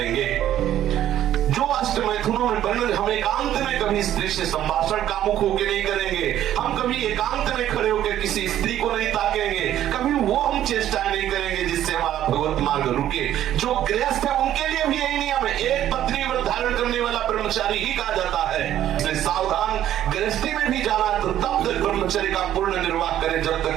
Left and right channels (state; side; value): quieter; left; 11.9 dB